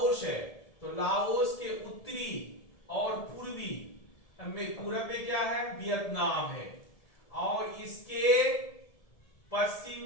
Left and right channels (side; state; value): right; late; 1.7 ms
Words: है। तो लाओस के उत्तरी और पूर्वी में, पूरब में क्या है, वियतनाम है, और इसके पश्चिम